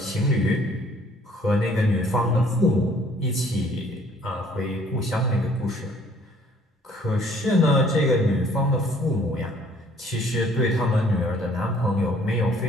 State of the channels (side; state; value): both; normal; correlation 0.58